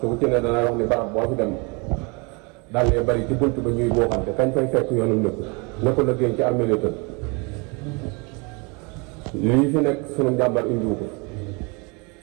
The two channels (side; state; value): left; quieter; 30.3 dB